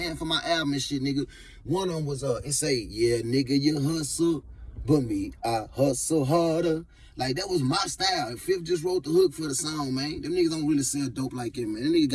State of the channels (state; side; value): identical; both; correlation 1.00